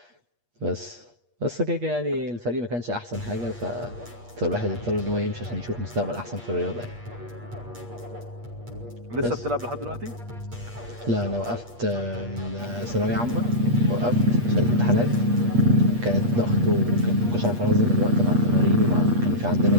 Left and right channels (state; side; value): late; left; 8.4 ms